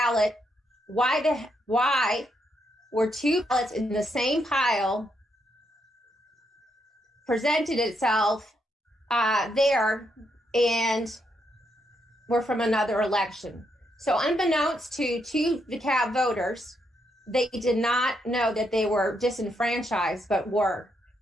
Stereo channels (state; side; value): normal; both; correlation 0.78